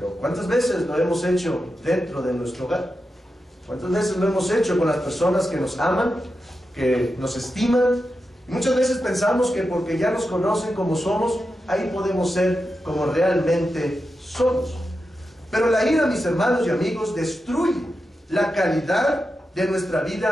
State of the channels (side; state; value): both; normal; correlation 0.89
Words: ¿cuántas veces lo hemos hecho dentro de nuestro hogar? ¿Cuántas veces lo hemos hecho con las personas que nos aman, que nos estiman? Y muchas veces pensamos que porque ya nos conocen como somos, ahí podemos ser como realmente somos. Pero la ira, mis hermanos y amigos, destruye la calidad de nuestra